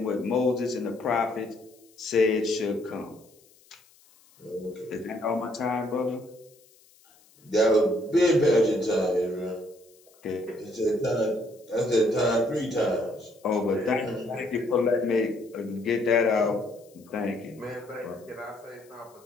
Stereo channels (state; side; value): noise; left; hiss, 29 dB below the sound